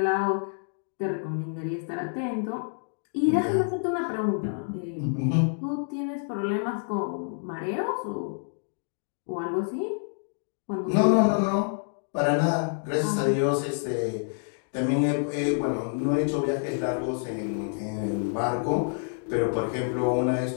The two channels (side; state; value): right; silent; digital silence